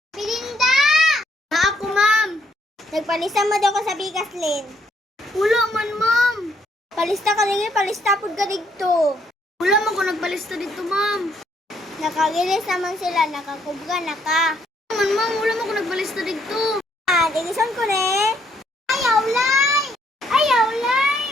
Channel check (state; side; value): normal; both; correlation 0.70